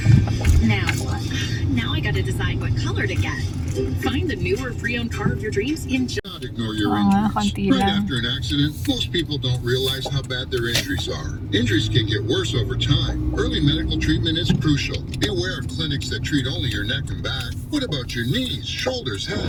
Now what? Now I gotta decide what color to get. Find the new or pre-owned car of your dreams in Not ignore your Oo nga, injuries. konti Right lang. after an accident, most people don't realize how bad their injuries are. Injuries can get worse over time. Early medical treatment is crucial. Be aware of clinics that treat only your neck and back. What about your knees, shoulders,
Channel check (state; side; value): identical; both; correlation 1.00